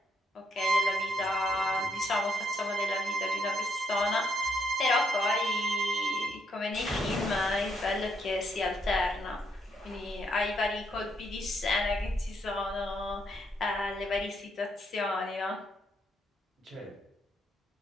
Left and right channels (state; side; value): normal; both; correlation 0.75